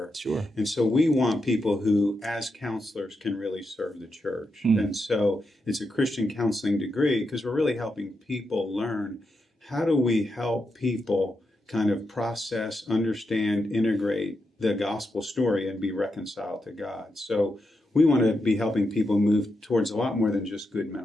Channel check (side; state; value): both; normal; correlation 0.86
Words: Sure. And so we want people who, as counselors, can really serve the church. And so it's a Christian counseling degree because we're really helping people learn how do we help people kind of process, understand, integrate the gospel story and be reconciled to God. So we want to be helping people move towards a lot more than just good